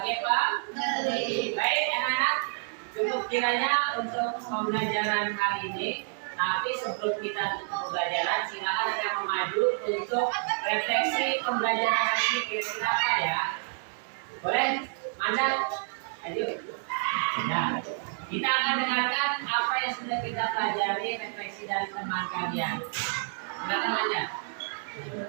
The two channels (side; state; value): left; silent; 59 dB below the other